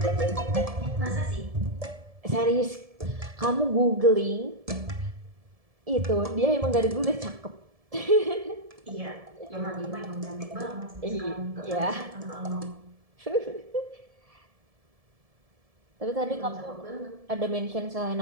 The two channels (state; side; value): late; left; 1.7 ms